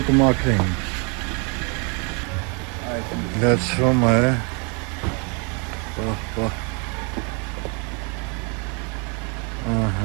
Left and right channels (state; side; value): quieter; left; 34.8 dB